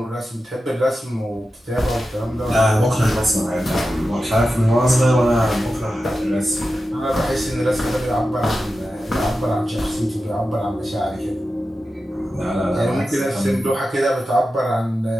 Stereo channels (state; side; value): normal; both; correlation 0.92